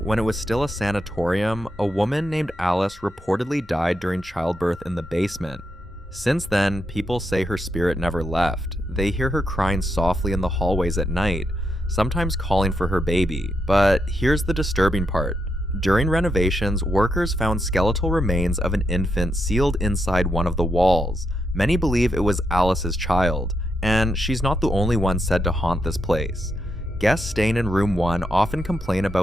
when it was still a sanatorium, a woman named Alice reportedly died during childbirth in the basement. Since then, people say her spirit never left. They hear her crying softly in the hallways at night, sometimes calling for her baby. But here's the disturbing part. During renovations, workers found skeletal remains of an infant sealed inside one of the walls. Many believe it was Alice's child, and she's not the only one said to haunt this place. Guests staying in room 1 often complain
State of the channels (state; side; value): normal; both; correlation 0.82